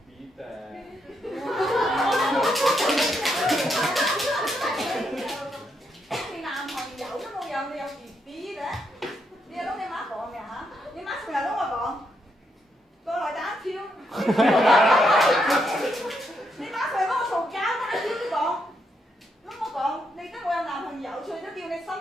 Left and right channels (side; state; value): both; normal; correlation 0.79